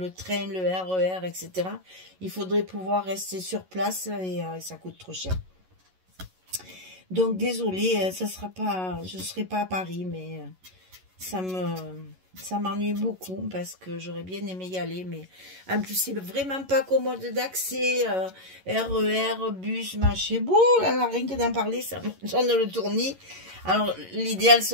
train, le RER, etc., il faudrait pouvoir rester sur place, et ça coûte trop cher. Donc désolé, ça sera pas, je ne serai pas à Paris, mais ça m'ennuie beaucoup parce que j'aurais bien aimé y aller, mais en plus c'est vraiment pas commode d'accès, RER, bus, machin, bon, là, rien que d'en parler, ça me donne le tournis. Alors l'idéal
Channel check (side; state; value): left; late; 11 ms